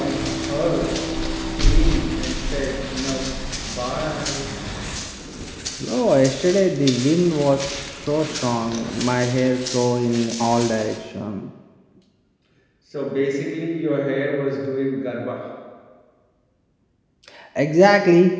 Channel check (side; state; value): both; identical; correlation 1.00